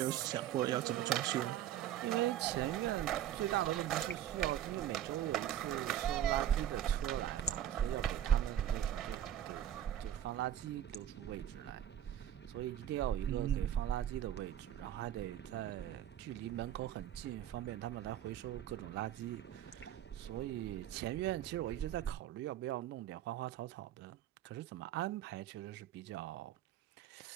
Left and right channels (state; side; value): quieter; left; 11.1 dB